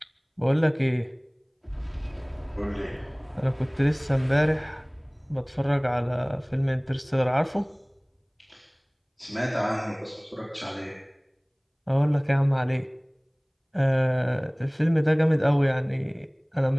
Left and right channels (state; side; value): identical; both; correlation 1.00